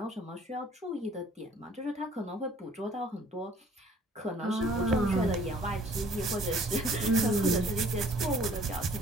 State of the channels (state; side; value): normal; both; correlation 0.56